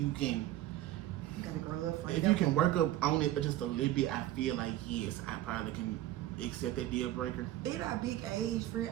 can. You gotta grow up for it. If you can work up on it just a little bit, I feel like yes, I probably can accept that deal breaker. At our big age, friend,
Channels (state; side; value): quieter; left; 14.3 dB